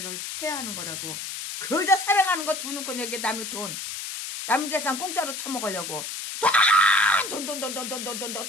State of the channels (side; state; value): left; noise; hiss, 7 dB below the sound